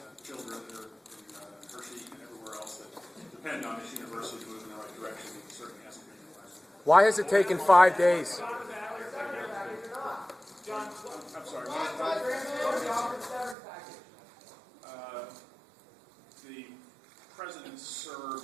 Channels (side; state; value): left; drops out; at 13.6 s